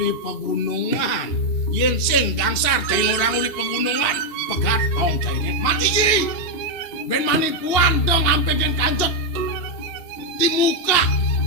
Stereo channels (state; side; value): late; right; 2.7 ms